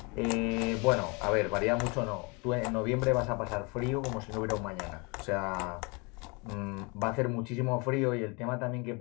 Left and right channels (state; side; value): quieter; right; 30.0 dB